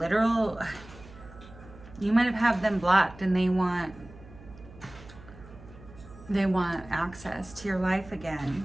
You might have them blocked, and they want access to your life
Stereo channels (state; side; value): noise; right; hum, 19 dB below the sound